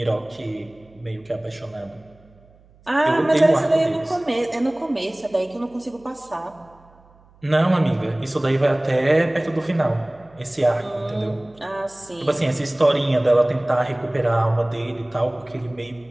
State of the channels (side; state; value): right; noise; hum, 29 dB below the sound